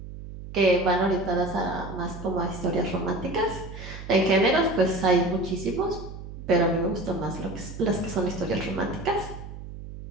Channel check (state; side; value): noise; right; hum, 12 dB below the sound